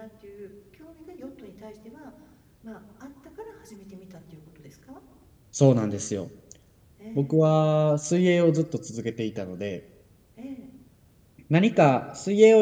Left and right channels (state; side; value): identical; both; correlation 1.00